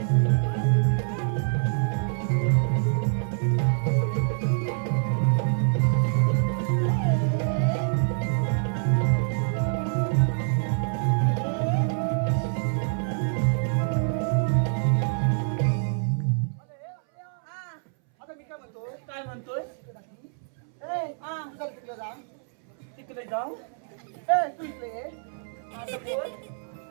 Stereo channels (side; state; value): left; silent; 61 dB below the other